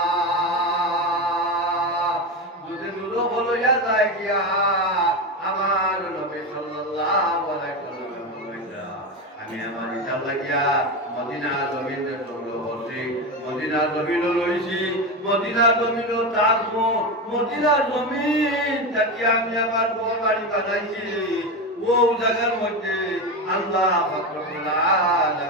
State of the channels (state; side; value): normal; both; correlation 0.17